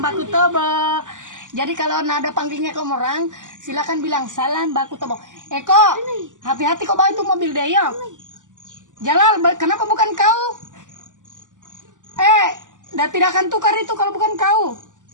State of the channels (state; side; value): late; left; 0.87 ms